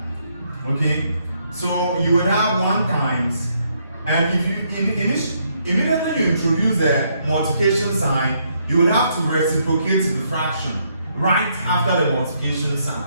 Okay? So you would have 1 times, and if you immediately you introduce the multiplication sign, you would have to reciprocate the fraction right after the multiplication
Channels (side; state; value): both; inverted; correlation -0.73